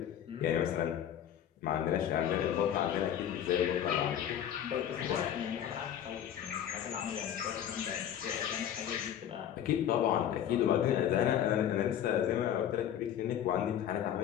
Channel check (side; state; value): right; quieter; 10.1 dB